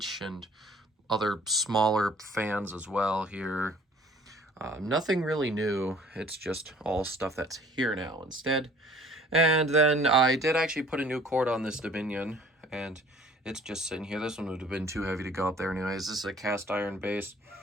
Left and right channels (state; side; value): normal; both; correlation 0.53